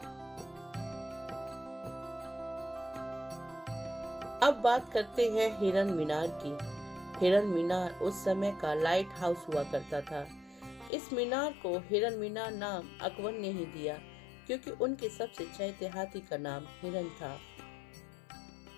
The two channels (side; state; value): right; drops out; at 10.9 s